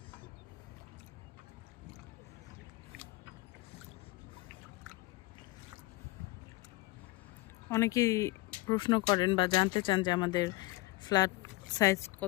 অনেকেই প্রশ্ন করেন বা জানতে চান যে আমাদের ফ্ল্যাট সাইজ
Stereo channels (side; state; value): right; quieter; 20.8 dB